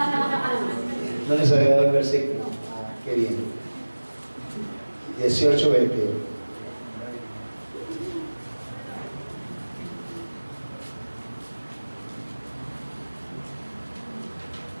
No les había dado el versículo. Qué bien. 18, 21.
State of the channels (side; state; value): both; inverted; correlation -1.00